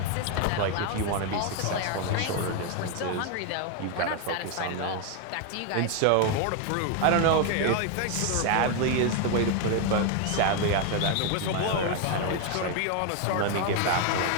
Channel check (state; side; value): different; both; correlation 0.01